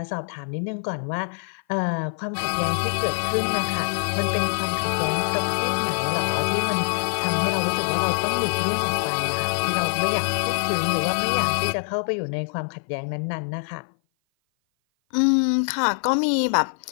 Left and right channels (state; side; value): silent; right; 56 dB below the other